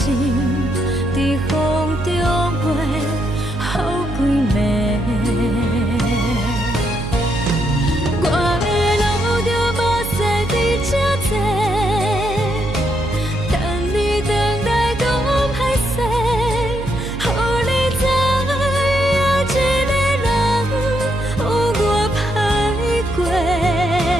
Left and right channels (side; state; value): right; noise; hum, 7 dB below the sound